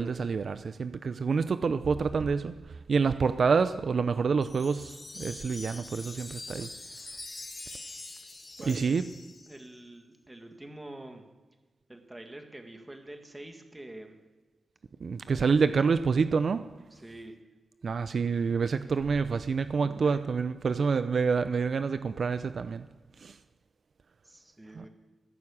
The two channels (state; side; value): quieter; left; 4.9 dB